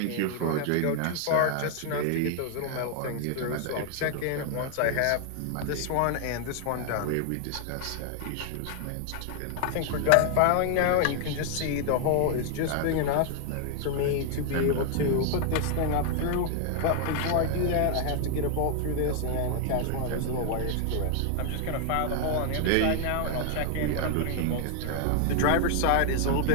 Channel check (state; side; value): different; both; correlation 0.00